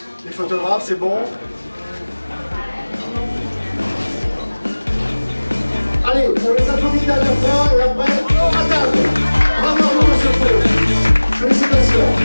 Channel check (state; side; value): inverted; both; correlation -1.00